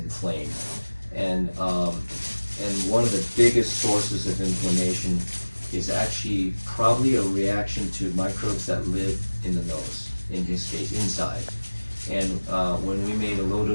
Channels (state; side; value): inverted; both; correlation -1.00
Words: and one of the biggest sources of inflammation is actually probably a reaction to microbes that live in the nose, in his case, inside. And when we made a low